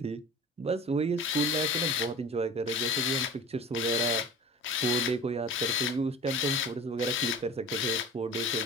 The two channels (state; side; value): normal; both; correlation 0.38